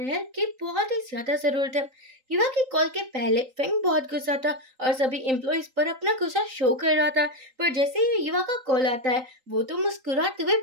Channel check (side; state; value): left; late; 3.8 ms